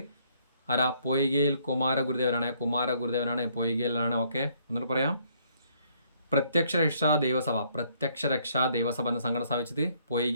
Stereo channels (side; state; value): both; inverted; correlation -0.67